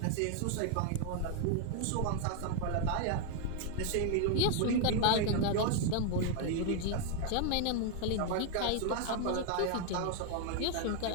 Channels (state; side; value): different; both; correlation 0.00